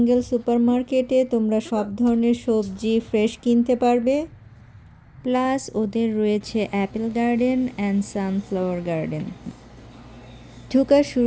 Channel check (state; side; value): identical; both; correlation 1.00